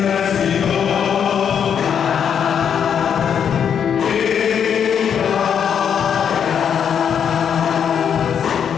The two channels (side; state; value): right; quieter; 8.0 dB